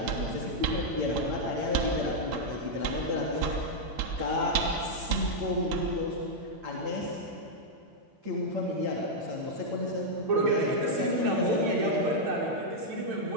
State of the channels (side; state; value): left; late; 8.9 ms